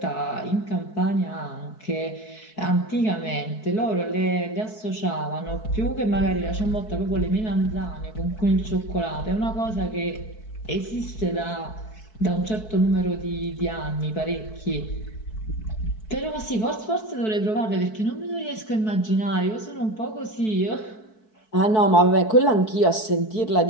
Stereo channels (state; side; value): late; right; 4.6 ms